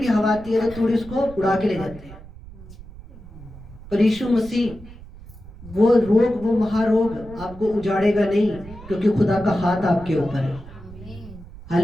हवा आती है तो तूड़ी उसको उड़ा के ले जाती है। पर यीशु मसीह वो रोग, वो महारोग आपको उजाड़ेगा नहीं, क्योंकि खुदा का हाथ आपके ऊपर है।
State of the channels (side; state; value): right; noise; rumble, 17 dB below the sound